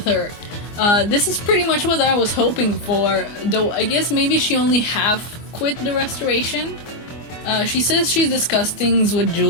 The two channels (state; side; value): late; right; 24 ms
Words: her. This is pretty much what I was hoping for, though I guess maybe she only half quit the restoration. She says she's discussed things with